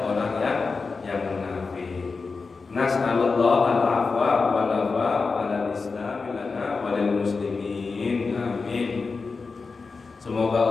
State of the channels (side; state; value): right; quieter; 4.4 dB